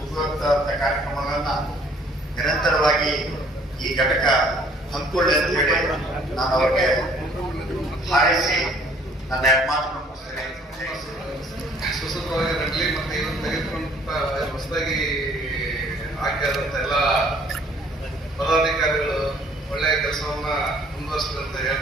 ಉಪಯುಕ್ತ ಕಾರ್ಯಕ್ರಮಗಳನ್ನ ನಿರಂತರವಾಗಿ ಈ ಘಟಕ ಹಮ್ಮಿಕೊಳ್ಳಿ ಅಂತ ಹೇಳಿ ನಾನು ಅವರಿಗೆ ಹಾರೈಸಿ ನನ್ನ ಮಾತನ್ನು ಮುಗಿಸ್ತೇನೆ. ಸುಸೂತ್ರವಾಗಿ ನಡಲಿ ಮತ್ತು ಇವತ್ತು ತೆಗೆದುಕೊಂಡ ಹೊಸದಾಗಿ ಆಯ್ಕೆಯಾದಂಥ ಎಲ್ಲ ಪದಾಧಿಕಾರಿಗಳು ಒಳ್ಳೆಯ ಕೆಲಸವನ್ನ ಮುಂದುವರಿಸಿದೆ ಅಂತ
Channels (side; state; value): both; normal; correlation 0.59